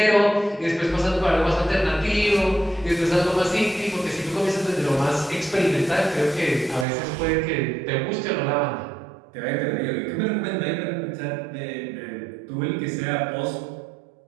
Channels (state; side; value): drops out; left; at 6.9 s